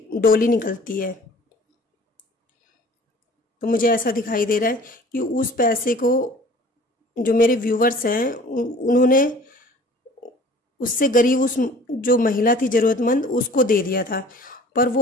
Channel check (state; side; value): normal; both; correlation 0.48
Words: डोली निकलती है। तो मुझे ऐसा दिखाई दे रहा है कि उस पैसे को जो मेरे व्यूवर्स हैं उन्होंने उससे गरीब, उस जो महिला थी ज़रूरतमंद, उसको दे दिया था। पर